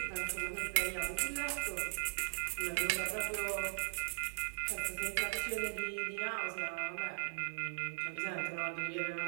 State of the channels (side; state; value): left; silent; digital silence